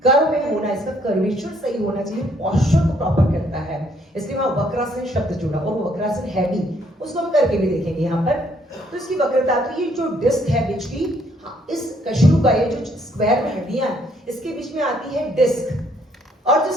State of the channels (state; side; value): normal; both; correlation 0.67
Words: कर्व में होना, इसका कर्वेचर सही होना चाहिए, पोस्चर को प्रॉपर करता है, इसलिए वहां वक्रासन शब्द जुड़ा। और वो वक्रासन है भी, उसको हम करके भी देखेंगे यहाँ पर। तो इसकी वक्रता, तो ये जो डिस्क है बीच की, इस कशेरुका, ये जो स्क्वायर में हड्डियां, इसके बीच में आती है डिस्क। और जो